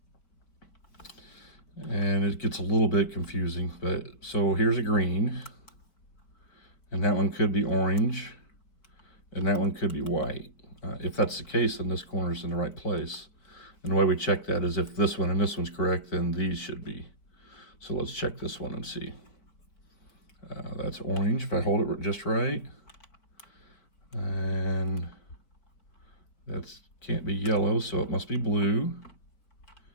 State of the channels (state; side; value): late; right; 4.7 ms